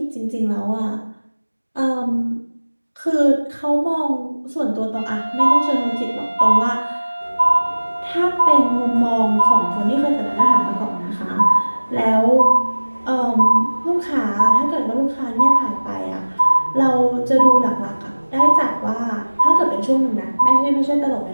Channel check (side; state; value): both; inverted; correlation -1.00